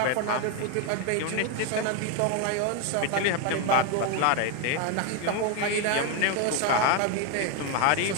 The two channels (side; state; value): both; different; correlation 0.01